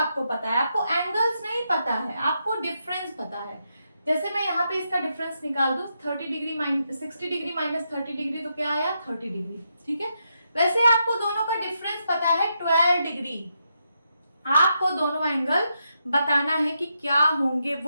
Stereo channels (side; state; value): both; inverted; correlation -0.82